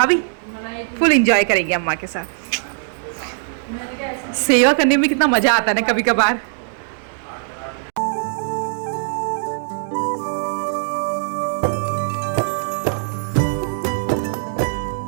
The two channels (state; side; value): silent; left; digital silence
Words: फुल एंजॉय करेंगे अम्मा के साथ। सेवा करने में कितना मजा आता है ना कभी कभार।